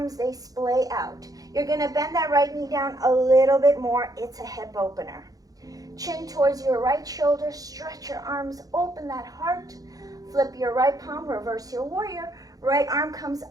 they splay out. You're going to bend that right knee down a little bit more. It's a hip opener. Chin towards your right shoulder, stretch your arms, open that heart, flip your right palm, reverse your warrior, right arm comes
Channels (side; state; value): left; late; 0.18 ms